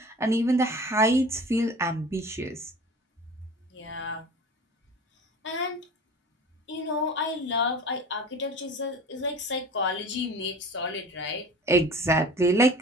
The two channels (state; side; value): normal; both; correlation 0.40